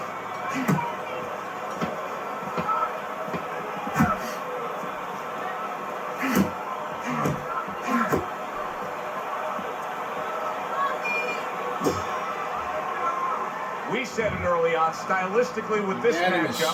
We said it early on, stylistically with this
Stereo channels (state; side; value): identical; both; correlation 1.00